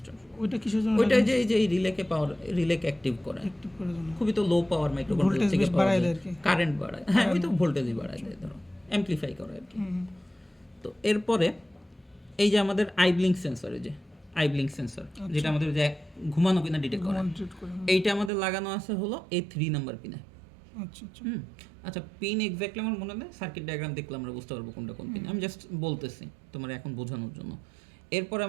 ওইটা কিসের জন্য? ওইটা যে এই যে রিলেকে অ্যাক্টিভ করে, অ্যাক্টিভ করার জন্য। খুবই তো লো পাওয়ার মাইক্রোকন্ট্রোলার ভোল্টেজ থেকে বেশ বাড়ায় দেয় আর কি। কারেন্ট বাড়ায়, হ্যাঁ ওই তো ভোল্টেজই বাড়ায় দেয়, ধরো অ্যামপ্লিফাই করে আর কি। তো এরপরে এই যে আমাদের আইব্লিঙ্ক সেন্সর, এই যে আইব্লিঙ্ক সেন্সর, যেটা আমাদের যে ঘুমানো কিনা ডিটেক্ট করে, এইটা আমাদের লাগানো আছে হলো A3 নাম্বার পিনে। আচ্ছা আচ্ছা, আচ্ছা, পিন এক্স্যাক্টলি আমার মনে নেই, সার্কিট ডায়াগ্রাম দেখলে আমরা বুঝতে পারবো কোনটা কোন পিন, আমি জাস্ট বলতেছি তোমার এখন বোঝানোর জন্য। এরপর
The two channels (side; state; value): left; drops out; at 18.3 s